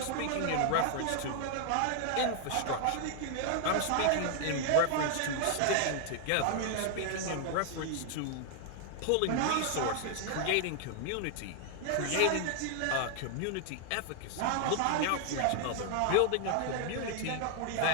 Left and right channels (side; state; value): both; different; correlation -0.01